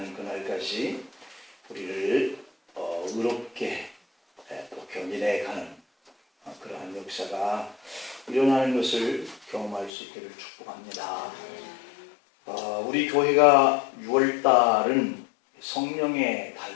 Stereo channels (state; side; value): drops out; right; at 9.9 s